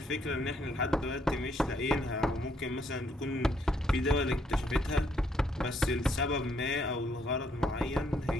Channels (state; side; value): normal; both; correlation 0.71